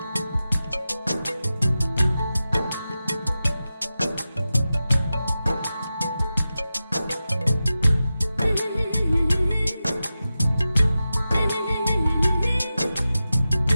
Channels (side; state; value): both; inverted; correlation -0.93